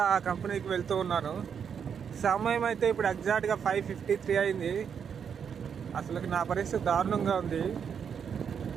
ఆ కంపెనీకి వెళ్తూ ఉన్నాను. సమయం అయితే ఇప్పుడు ఎగ్జాక్ట్గా 5:53 అయింది. అసలు నా పరిస్థితి దారుణంగా ఉంది.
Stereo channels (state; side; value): quieter; left; 7.3 dB